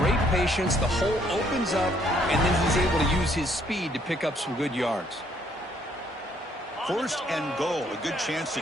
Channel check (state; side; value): normal; both; correlation 0.67